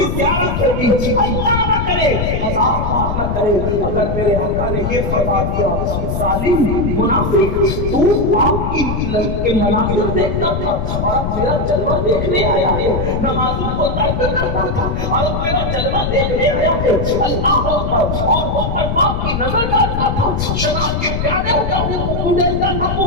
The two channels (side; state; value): left; noise; rumble, 2 dB below the sound